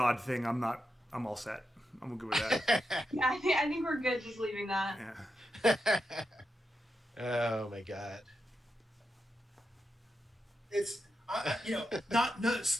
thing, I'm all set. I'm good with that. Yeah, I think we're good just leaving that. Yeah. Oh my god. It's no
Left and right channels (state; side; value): normal; both; correlation 0.87